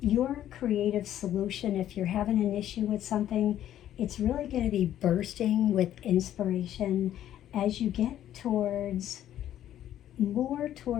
creative solution, if you're having an issue with something, it's really going to be bursting with inspiration as you get more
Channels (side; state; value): right; quieter; 11.7 dB